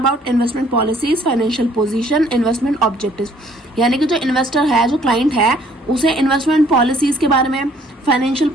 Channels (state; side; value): normal; both; correlation 0.61